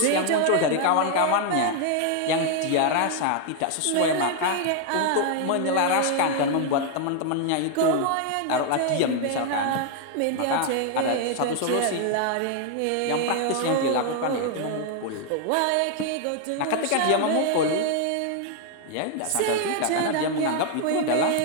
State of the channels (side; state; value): both; different; correlation 0.00